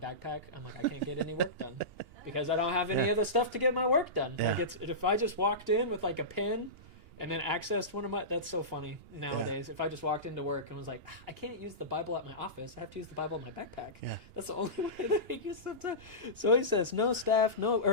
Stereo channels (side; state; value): left; late; 2.8 ms